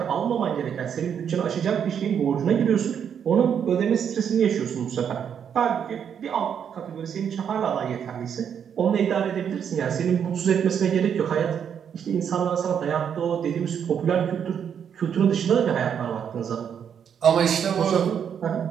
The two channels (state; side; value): quieter; left; 8.0 dB